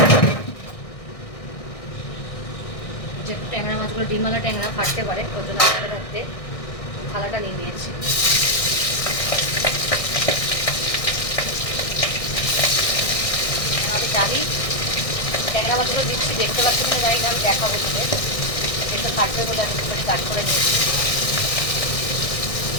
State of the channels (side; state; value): right; late; 1.6 ms